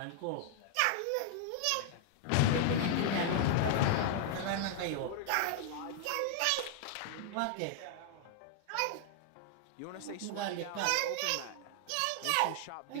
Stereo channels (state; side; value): different; both; correlation 0.00